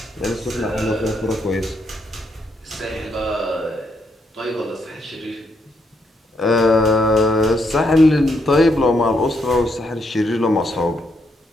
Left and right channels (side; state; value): both; normal; correlation 0.77